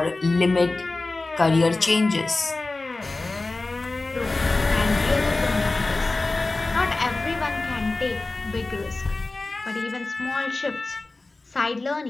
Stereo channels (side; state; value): right; quieter; 3.3 dB